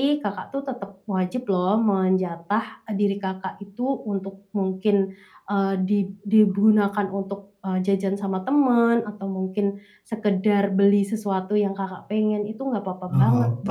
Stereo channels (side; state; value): both; identical; correlation 1.00